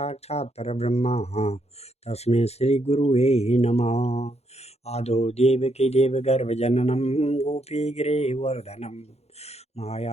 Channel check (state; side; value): late; right; 0.31 ms